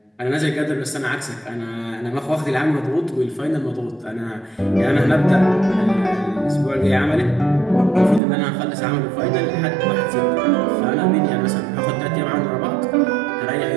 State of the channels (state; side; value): drops out; left; at 8.2 s